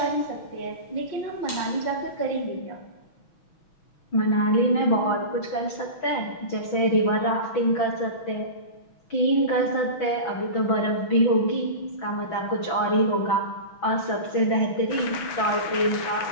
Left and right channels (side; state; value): right; late; 6.2 ms